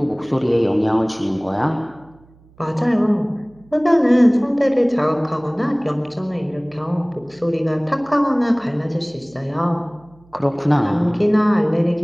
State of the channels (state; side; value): noise; right; hum, 28 dB below the sound